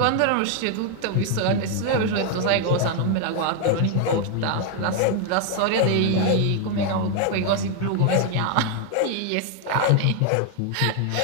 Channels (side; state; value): both; different; correlation 0.01